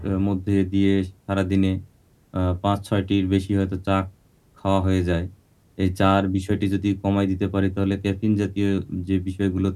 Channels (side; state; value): both; identical; correlation 1.00